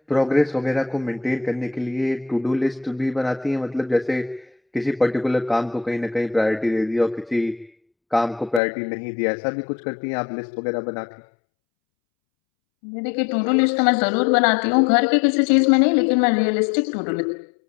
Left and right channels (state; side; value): drops out; right; at 8.6 s